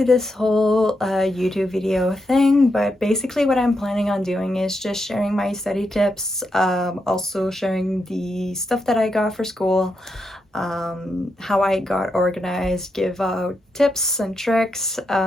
this whole YouTube video thing, but basically what I'm planning on doing is just sharing my study tips, also sharing the stuff that I got for school, how I got organized, give out tips and tricks,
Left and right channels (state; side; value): normal; both; correlation 0.83